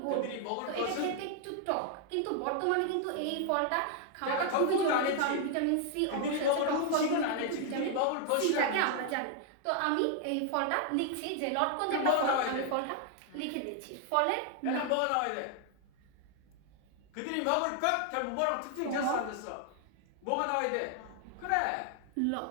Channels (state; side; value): different; both; correlation 0.00